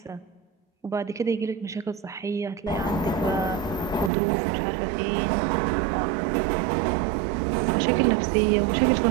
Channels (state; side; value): drops out; left; at 4.1 s